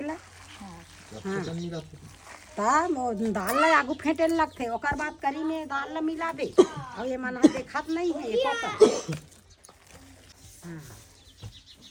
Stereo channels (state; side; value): identical; both; correlation 1.00